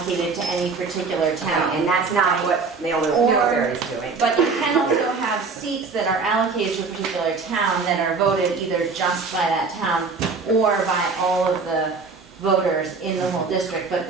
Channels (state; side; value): quieter; left; 4.5 dB